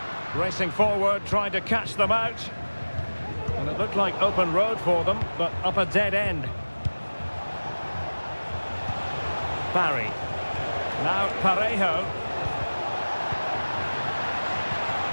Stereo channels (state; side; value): inverted; both; correlation -1.00